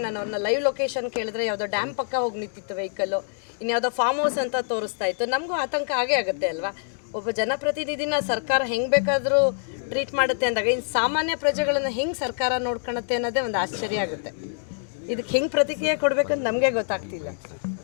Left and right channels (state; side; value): silent; right; digital silence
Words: ನಾನು ಅವ್ರನ್ನ ಲೈವ್ ಲೊಕೇಶನ್ ಕೇಳಿದ್ರೆ ಯಾವುದೋ ಡ್ಯಾಮ್ ಪಕ್ಕ ಹೋಗಿ ನಿಂತಿತ್ತು ವೆಹಿಕಲ್ಲು, ಇನ್ಯಾವುದೋ ಫಾರ್ಮ್ ಹೌಸ್ ಅಂತ ತೋರಿಸ್ತಾ ಇತ್ತು. ನಮಗೂ ಆತಂಕ ಆಗೇ ಆಗುತ್ತೆ ಅಲ್ವಾ? ಒಬ್ಬ ಜನಪ್ರತಿನಿಧಿನ ಸರ್ಕಾರ ಹೆಂಗೆ ಬೇಕಾದರೂ ಟ್ರೀಟ್ ಮಾಡುತ್ತೆ ಅಂದಾಗ ಇನ್ನು ಸಾಮಾನ್ಯ ಪ್ರಜೆಗಳನ್ನು ಹೆಂಗೆ ಸರ್ಕಾರ ನೋಡ್ಕೊಳುತ್ತೆ ಅನ್ನೋದೇ ಒಂದು ಆಶ್ಚರ್ಯ ಆಗುತ್ತೆ. ಇದಕ್ಕೆ ಹೆಂಗೆ ಪ್ರತಿಕ್ರಿಯೆ ಕೊಡಬೇಕಂತ ನಮಗೆ ಗೊತ್ತಾಗ್ತಿಲ್ಲ.